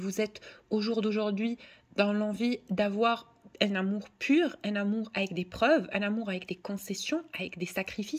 êtes au jour d'aujourd'hui dans l'envie d'avoir un amour pur, un amour avec des preuves, un amour avec des concessions, avec des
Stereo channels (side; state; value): both; identical; correlation 1.00